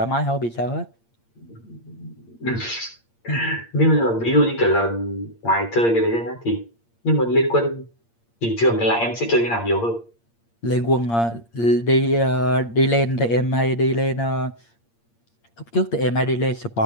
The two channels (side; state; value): right; late; 8.6 ms